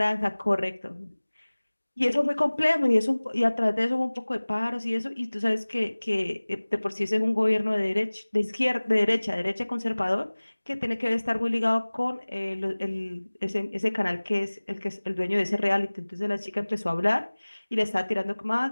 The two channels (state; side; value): inverted; both; correlation -1.00